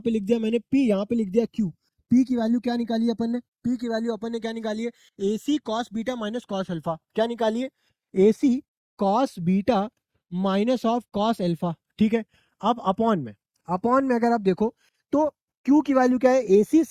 लिख दिया मैंने पी, यहाँ पे लिख दिया क्यू। पी की वैल्यू क्या निकाली है अपन ने, पी की वैल्यू अपन ने क्या निकाली है, AC cos beta minus cos alpha. क्या निकाली है, AC cos beta minus of cos alpha. ठीक है, अब अपॉन में अगर आप देखो तो क्यू की वैल्यू क्या है, AC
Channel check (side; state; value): both; identical; correlation 1.00